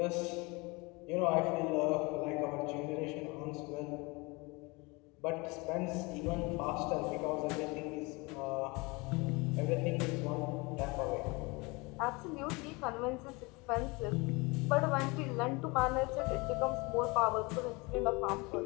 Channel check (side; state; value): right; quieter; 26.3 dB